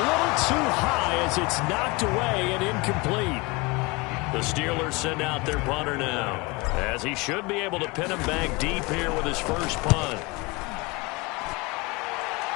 little too high as it's knocked away and incomplete. The Steelers send out their punter now, as he should be able to pin him back deep here with his first punt.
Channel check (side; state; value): right; quieter; 25.0 dB